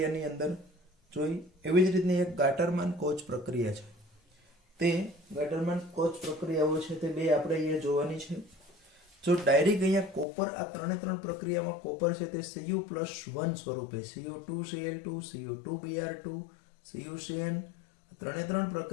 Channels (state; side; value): drops out; right; at 10.2 s